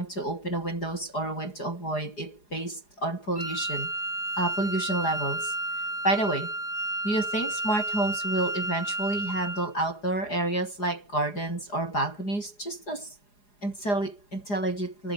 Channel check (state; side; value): late; right; 4.9 ms